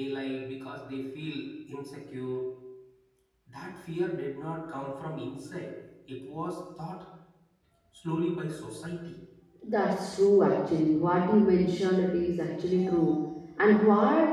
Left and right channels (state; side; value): identical; both; correlation 1.00